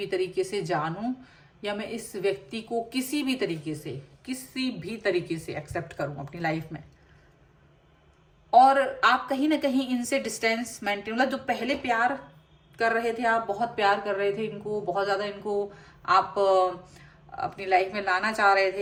तरीके से जानूं, या मैं इस व्यक्ति को किसी भी तरीके से एक्सेप्ट करूं अपनी लाइफ में। और आप कहीं ना कहीं इनसे डिस्टेंस मेंटेन, मतलब जो पहले प्यार कर रहे थे, आप बहुत प्यार कर रहे थे इनको, बहुत ज्यादा इनको आप अपनी लाइफ में लाना चाह रहे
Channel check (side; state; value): both; identical; correlation 1.00